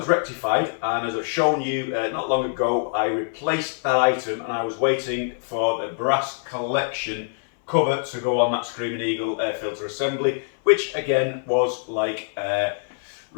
rectified, and as I've shown you not long ago, I replaced that item and I was waiting for the brass collection cover to go on that Screaming Eagle air filter assembly, which again was like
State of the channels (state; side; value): silent; right; 63 dB below the other